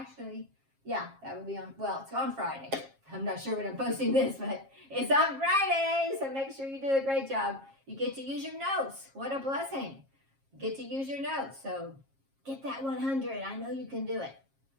yeah, that would be on, well, it's on Friday. I'm not sure when I'm posting this, but it's on Friday. So make sure you do a great job. You get to use your notes. What a blessing. You get to use your notes. So get that 100. I know you can do it.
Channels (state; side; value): late; left; 7.4 ms